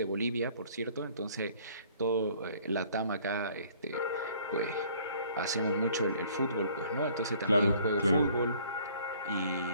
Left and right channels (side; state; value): both; inverted; correlation -0.57